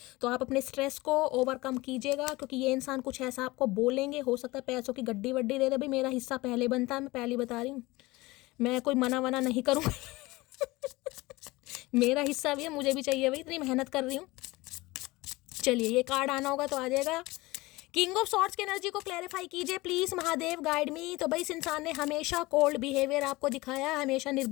तो आप अपने स्ट्रेस को ओवरकम कीजिएगा, क्योंकि ये इंसान कुछ ऐसा आपको बोलेंगे, हो सकता है पैसों की गड्डी वड्डी दे दे। भाई मेरा हिस्सा पहले बनता है, मैं पहले बता रही हूँ, मैं कोई मना वना नहीं करूँगा मेरा हिस्सा भी है, मुझे भी चाहिए भाई, इतनी मेहनत कर रही हूँ। चलिए ये कार्ड आना होगा तो आ जाएगा। किंग ऑफ सॉर्ड्स की एनर्जी को क्लैरिफाई कीजिए प्लीज महादेव, गाइड मी। तो भाई इस इंसान ने हमेशा कोल्ड बिहेवियर आपको दिखाया है, हमेशा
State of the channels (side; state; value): right; quieter; 21.1 dB